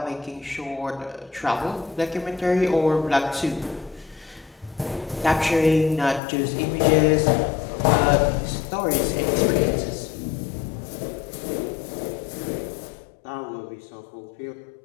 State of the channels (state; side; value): drops out; right; at 6.2 s